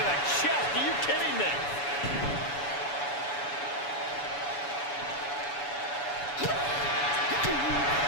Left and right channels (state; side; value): late; right; 7.0 ms